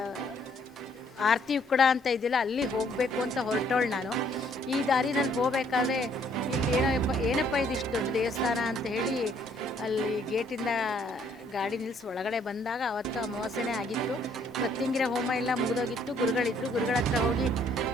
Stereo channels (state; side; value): normal; both; correlation 0.65